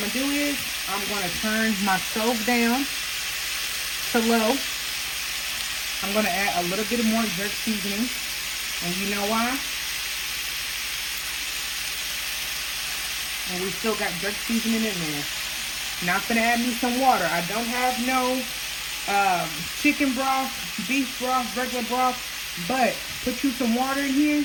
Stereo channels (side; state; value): both; identical; correlation 1.00